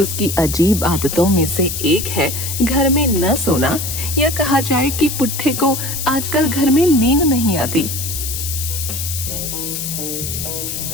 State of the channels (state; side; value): noise; left; hiss, 5 dB below the sound